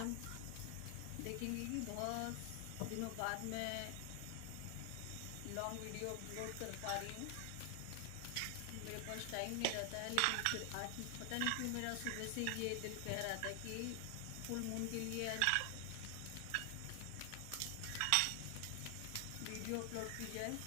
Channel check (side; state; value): both; different; correlation 0.00